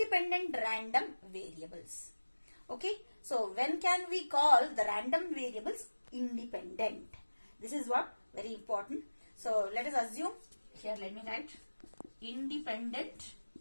random variables. Okay, so when can we call the random variables independent? This is what very important. So let us assume here, let me write independent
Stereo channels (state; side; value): inverted; both; correlation -1.00